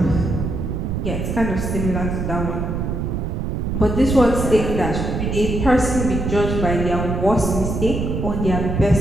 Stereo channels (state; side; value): noise; right; rumble, 2 dB below the sound